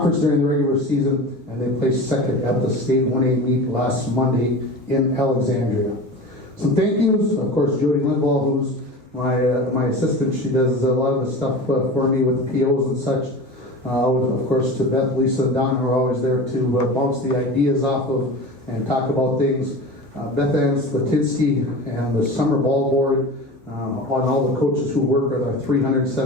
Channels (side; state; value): both; normal; correlation 0.32